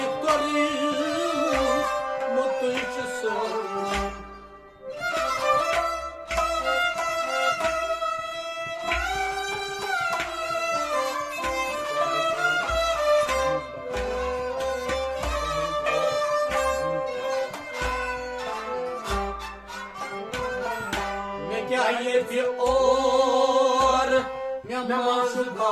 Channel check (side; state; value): both; identical; correlation 1.00